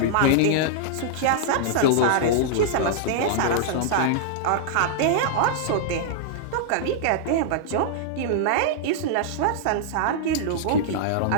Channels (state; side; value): different; both; correlation -0.02